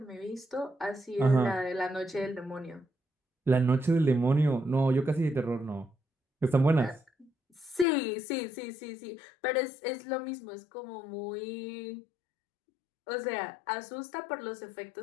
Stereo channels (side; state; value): right; drops out; at 7.9 s